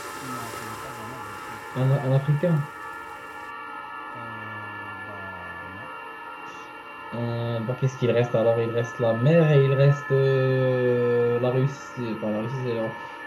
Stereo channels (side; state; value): both; identical; correlation 1.00